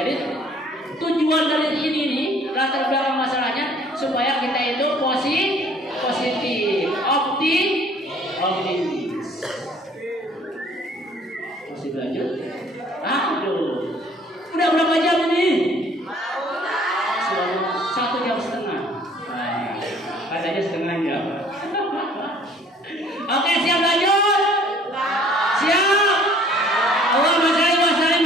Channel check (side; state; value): both; normal; correlation 0.56